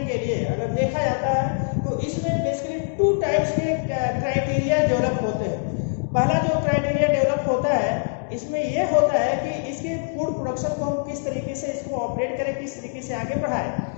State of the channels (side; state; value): right; silent; digital silence